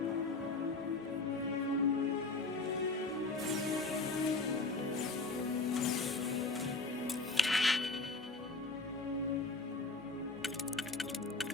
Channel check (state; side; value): quieter; right; 3.5 dB